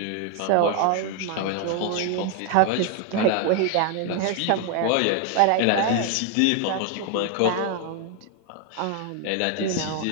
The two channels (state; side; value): different; both; correlation 0.01